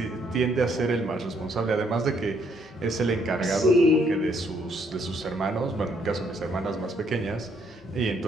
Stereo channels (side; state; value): both; normal; correlation 0.70